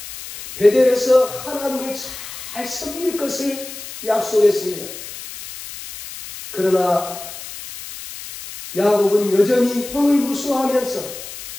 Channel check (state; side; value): noise; left; hiss, 12 dB below the sound